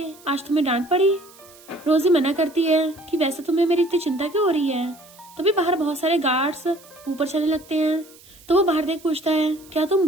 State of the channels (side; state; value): right; noise; hiss, 24 dB below the sound